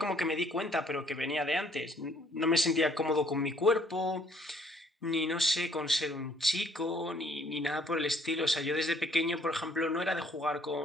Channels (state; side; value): normal; both; correlation 0.63